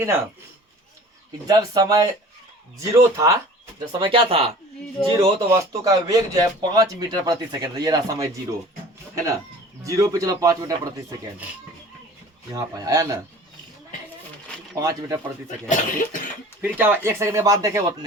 ना, कि जब समय 0 था, जब समय क्या था, 0, तो वस्तु का वेग जो है 5 मीटर प्रति सेकंड, ये रहा समय 0, है ना। 0 पे चलो 5 मीटर प्रति सेकंड, यहाँ पर आया ना, 5 मीटर प्रति सेकंड। फिर क्या हुआ, 1 सेकंड के बाद देखे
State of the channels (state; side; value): normal; both; correlation 0.45